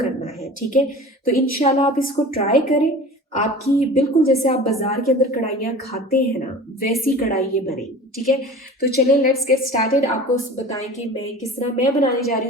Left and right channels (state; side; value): normal; both; correlation 0.39